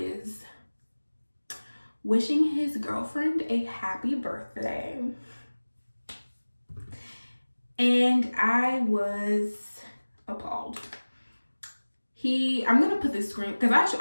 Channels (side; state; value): both; inverted; correlation -1.00